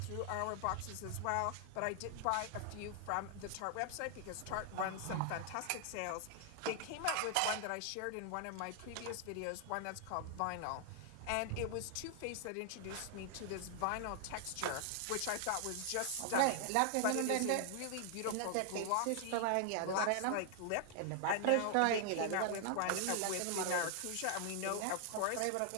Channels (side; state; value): both; different; correlation 0.00